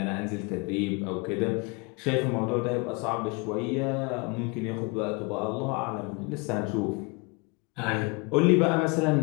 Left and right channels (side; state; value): right; quieter; 29.6 dB